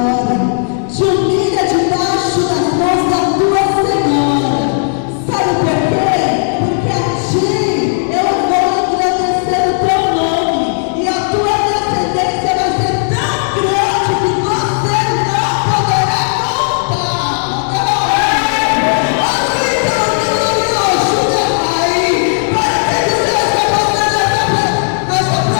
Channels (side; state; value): right; silent; 67 dB below the other